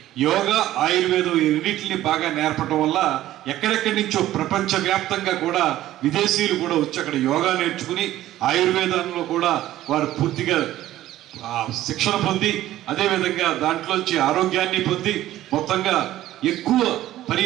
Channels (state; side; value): quieter; left; 14.1 dB